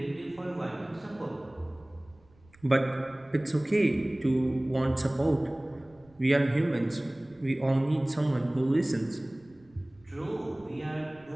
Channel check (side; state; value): right; noise; rumble, 29 dB below the sound